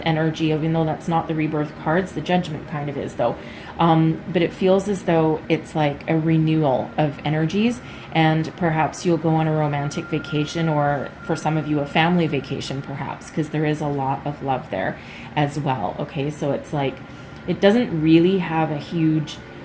energy, even though that's not the rebirth cards. The judgment kind of is, though. But it feels as though it's like a renewal of energies, and perhaps you'll go on a romantic vacation, or for some of you, a family vacation, perhaps, because there is a lot of love there as well, okay? So it's like, it doesn't really have a huge...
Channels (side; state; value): both; identical; correlation 1.00